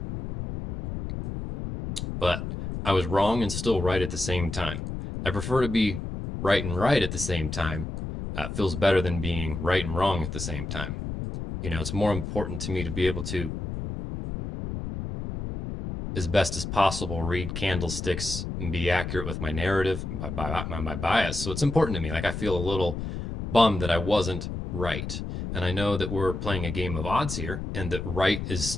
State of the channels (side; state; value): left; noise; rumble, 5 dB below the sound